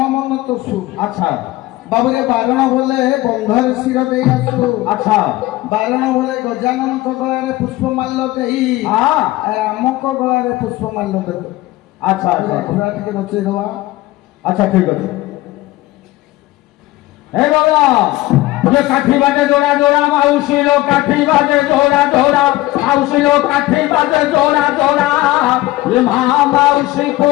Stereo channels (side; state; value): right; quieter; 17.9 dB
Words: मन तोसु अच्छा बाबरे बारण बोले बंधर सिर देई आसु अच्छा बारण बोले गजानन को गलारे पुष्पमाल्य देई राम को गलारे पुष्पमाल्य देबो अच्छा अच्छा घोड़ा टिके बचेई दवा अच्छा ठीक है हे बाबा ये काठी बाजे जोड़ा जोड़ा माउसी लो काठी बाजे जोड़ा जोड़ा माउसी लो काठी बाजे जोड़ा जोड़ा ये माउसी